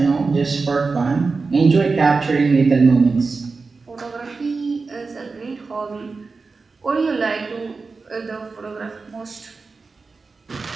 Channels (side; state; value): left; quieter; 4.3 dB